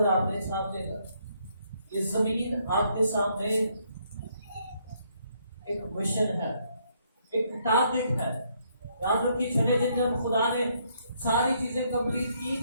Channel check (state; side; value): inverted; both; correlation -0.71